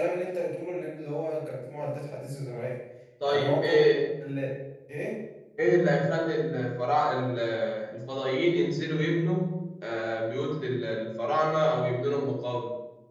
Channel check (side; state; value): both; identical; correlation 1.00